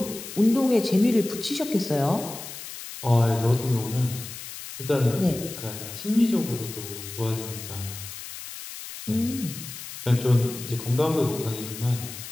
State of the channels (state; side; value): noise; left; hiss, 11 dB below the sound